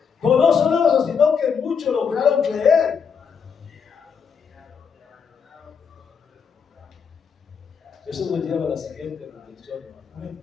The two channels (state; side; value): quieter; right; 6.5 dB